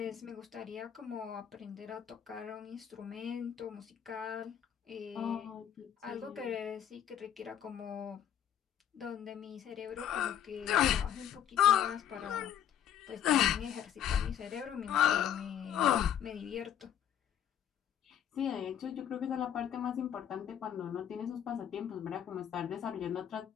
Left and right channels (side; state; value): right; quieter; 9.7 dB